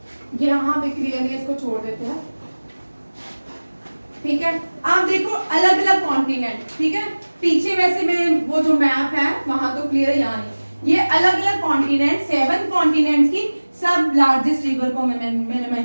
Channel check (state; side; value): inverted; both; correlation -1.00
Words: यहाँ पे क्लियरली इसको छोड़ देते हैं, ठीक है। आप देखो अलग अलग कॉन्टिनेंट, ठीक है। पीछे वैसे में वो जो मैप है वहां तो क्लियर, यहाँ नहीं। ये अलग अलग कॉन्टिनेंट, 7 कॉन्टिनेंट्स की सब लार्जेस्ट रिवर को मैंने